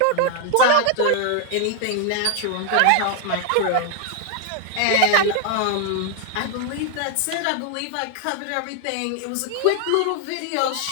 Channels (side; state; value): both; different; correlation 0.00